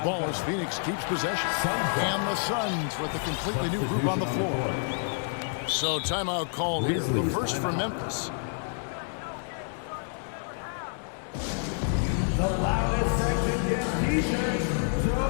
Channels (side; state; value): right; silent; digital silence